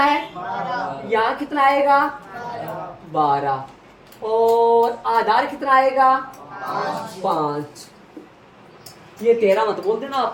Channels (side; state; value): both; identical; correlation 1.00